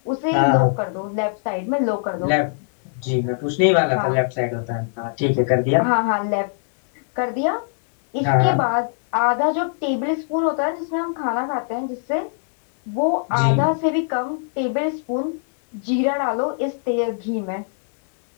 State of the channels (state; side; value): silent; right; 65 dB below the other